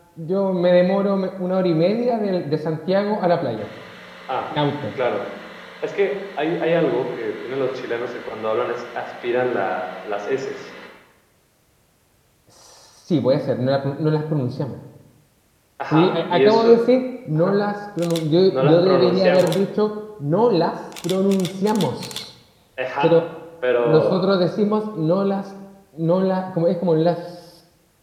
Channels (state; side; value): identical; both; correlation 1.00